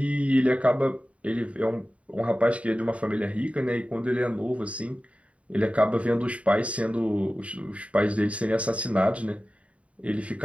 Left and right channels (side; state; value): left; late; 0.065 ms